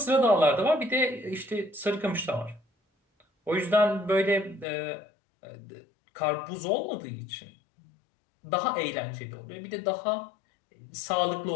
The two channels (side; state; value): right; drops out; at 4.7 s